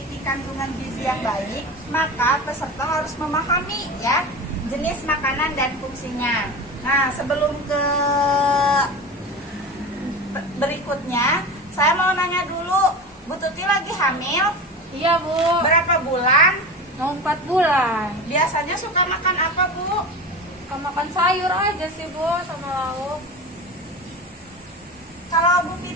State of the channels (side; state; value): both; normal; correlation 0.28